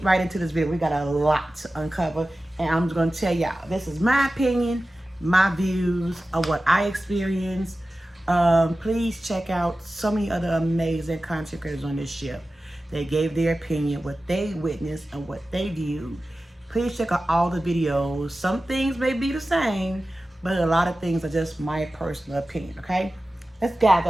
right into this video. We got a lot to uncover, and I'm just going to tell y'all, this is my opinion, my views of what I experienced. Please check out so many other amazing content creators on this ship. They gave their opinion, what they witnessed, and what they viewed. Please check out all the videos. Some things may be the same, but a lot of things are just my personal opinion, okay? Let's dive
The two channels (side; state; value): both; normal; correlation 0.95